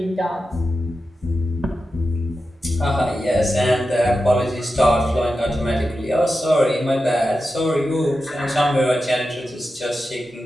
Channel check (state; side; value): normal; both; correlation 0.91